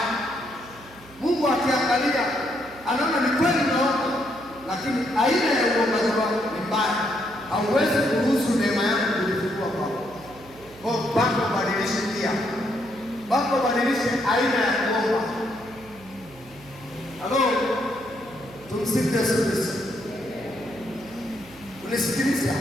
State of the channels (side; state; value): right; noise; hum, 22 dB below the sound